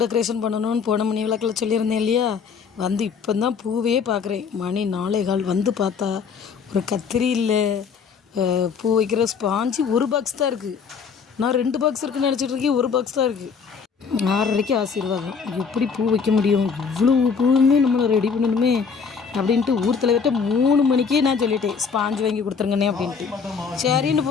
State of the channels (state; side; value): quieter; right; 5.9 dB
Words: டெக்கரேஷன் பண்ணணும்னு போன மணி விளக்கில் சொல்லியிருந்தேன் இல்லையா, வந்து இப்போ தான் பூவே பார்க்குறேன். மணி 4:15 வந்து பார்த்தா ஒரு கத்திரி இல்லை, பூ வைக்கிற ஸ்பாஞ்சு ஒரு பாக்ஸ் தான் இருக்குது. நான் 2 பாக்ஸ் இருக்குன்னு நினச்சிட்டு இருக்கேன், ஒரு பாக்ஸ் தான் இருக்குது. 6:30க்கு ஆசீர்வாதம். எப்படி பூ வைக்க முடியும், இவ்வளோ பூவுமே நம்மளை ரெடி பண்ணணுமே அப்படின்ட்டு ஊர் தலைவர்கிட்ட 3 மணிக்கே நான் சொல்லிட்டேன், ஸ்பாஞ்சு வாங்கி கொடுத்துருங்கண்ணே அப்படின்ட்டு. சரின்னு